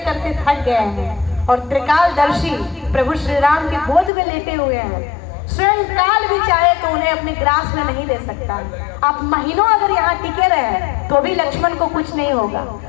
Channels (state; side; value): drops out; right; at 4.1 s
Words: करते थक गए हैं और त्रिकालदर्शी प्रभु श्री राम के गोद में लेटे हुए हैं। स्वयं काल भी चाहे तो उन्हें अपने ग्रास में नहीं ले सकता। आप महीनों अगर यहाँ टिके रहे तो भी लक्ष्मण को कुछ नहीं होगा।